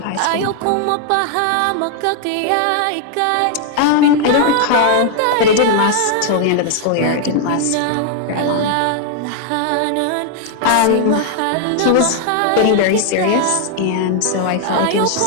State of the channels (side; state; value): both; different; correlation 0.00